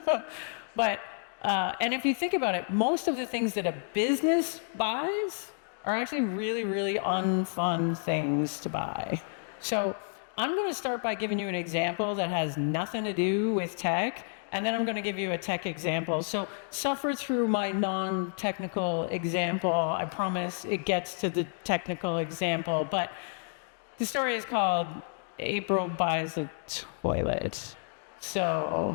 But, and if you think about it, most of the things that a business buys are actually really, really unfun things to buy. So I'm going to start by giving you an example that has nothing to do with tech, and then I'm going to give you a tech example. So suffer through my non-technical example. I promise it gets to the technical example. But the story is called April Buys a Toilet.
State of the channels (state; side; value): silent; right; digital silence